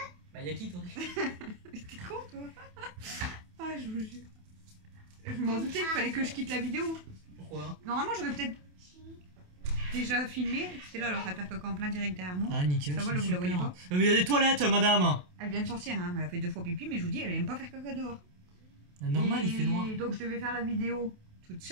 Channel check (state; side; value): late; left; 28 ms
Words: Bah, yakitori. T'es con toi. Ah, je vous jure. Je m'en doutais qu'il fallait que je quitte la vidéo. Pourquoi? Normalement, j'aurais peut-être déjà filmé. C'était là, elle est en train de faire caca en plein direct derrière moi. Ah, nickel. Ça va, c'est vous la voyez super. pas? Mais il y a des toilettes, madame. Elle vient de sortir, hein. Elle a fait 2 fois pipi, mais je vous dis, elle aime pas faire caca dehors. Normal, Et il fait noir. Donc je devais faire la vidéo toute